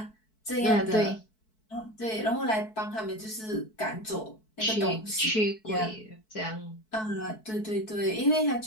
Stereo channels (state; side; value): late; right; 4.6 ms